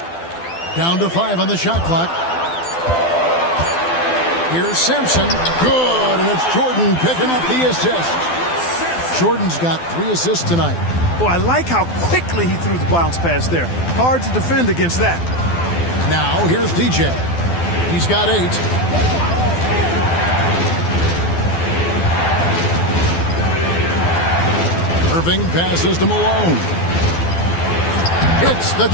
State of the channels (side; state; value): right; late; 12 ms